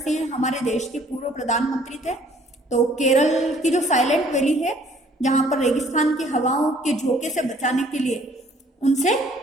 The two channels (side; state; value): both; normal; correlation 0.59